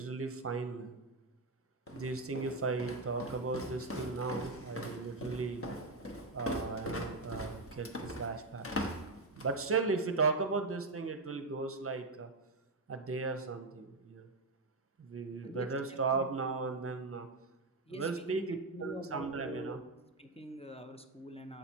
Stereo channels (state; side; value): quieter; left; 3.2 dB